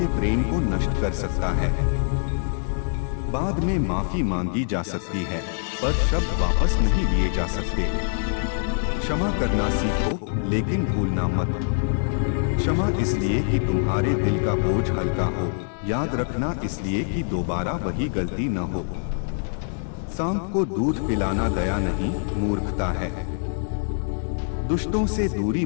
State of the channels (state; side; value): silent; right; digital silence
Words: प्रेम को नष्ट कर सकता है। बाद में माफी मांगी जा सकती है, पर शब्द वापस नहीं लिए जा सकते। क्षमा करना सीखो, लेकिन भूलना मत। क्षमा इसलिए कि तुम्हारे दिल का बोझ हल्का हो, याद रखना इसलिए कि दोबारा वही गलती न हो। सांप को दूध पिलाना दया नहीं, मूर्खता है। दुष्टों से दूरी